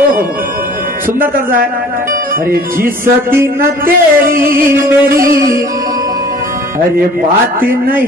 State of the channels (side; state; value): both; normal; correlation 0.49